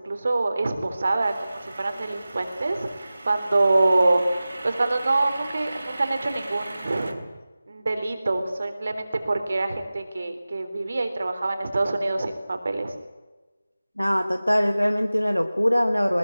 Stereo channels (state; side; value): inverted; both; correlation -0.97